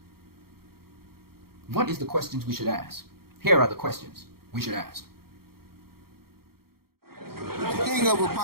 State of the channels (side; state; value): left; late; 0.94 ms